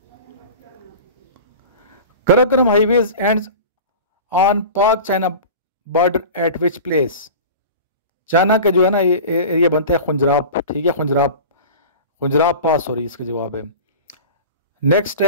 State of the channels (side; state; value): both; inverted; correlation -0.34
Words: Karakoram highways ends on Pak China border at which place? China का जो है ना ये एरिया बनता है खुंजराब, ठीक है. खुंजराब पास हो रही इसका जवाब है. नेक्स्ट